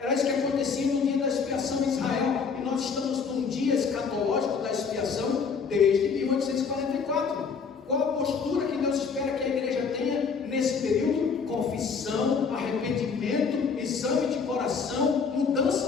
isso que acontecia no dia da expiação em Israel. E nós estamos num dia escatológico da expiação desde 1844. Qual a postura que Deus espera que a igreja tenha nesse período? Confissão, arrependimento, exame de coração,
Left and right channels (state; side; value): quieter; right; 5.6 dB